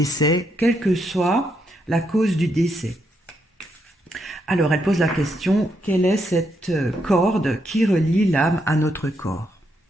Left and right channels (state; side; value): normal; both; correlation 0.78